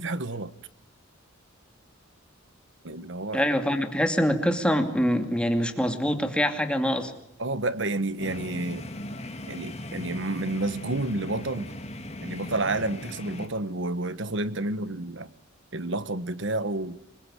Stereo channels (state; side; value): normal; both; correlation 0.57